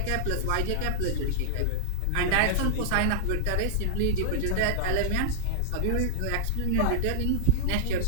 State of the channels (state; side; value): different; both; correlation -0.01